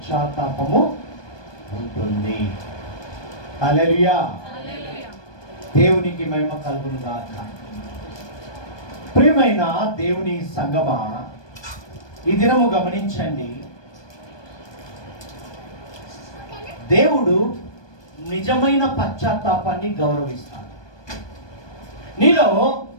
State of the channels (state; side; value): late; right; 1.2 ms